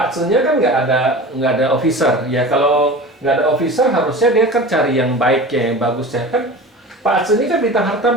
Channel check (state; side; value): normal; both; correlation 0.35